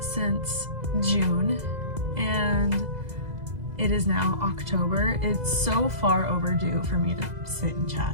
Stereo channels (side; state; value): left; late; 2.0 ms